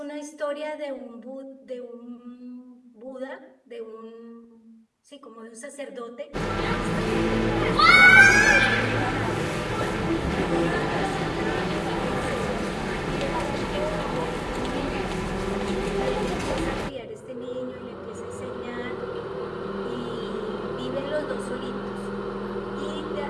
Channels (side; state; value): both; identical; correlation 1.00